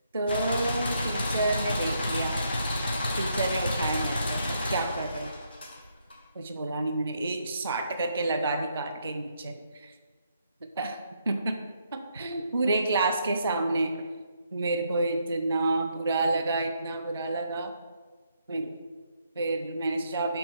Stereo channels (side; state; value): both; inverted; correlation -0.75